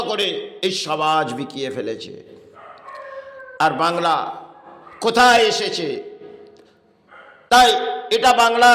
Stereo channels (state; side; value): identical; both; correlation 1.00